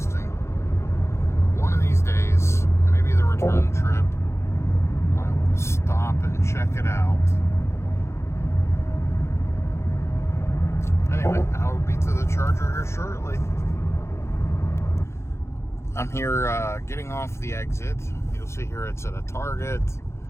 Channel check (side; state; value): right; late; 0.13 ms